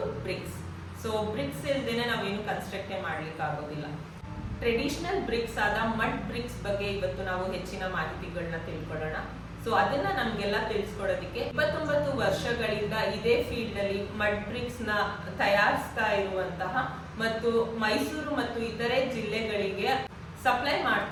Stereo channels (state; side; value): identical; both; correlation 1.00